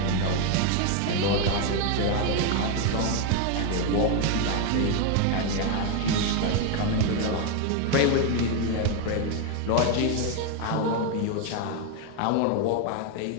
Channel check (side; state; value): both; different; correlation 0.01